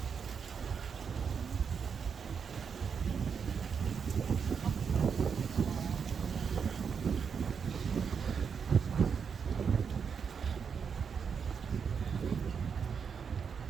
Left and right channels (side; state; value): left; quieter; 6.5 dB